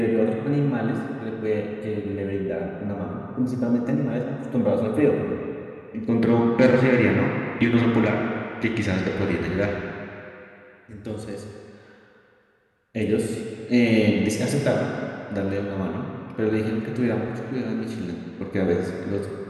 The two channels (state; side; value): identical; both; correlation 1.00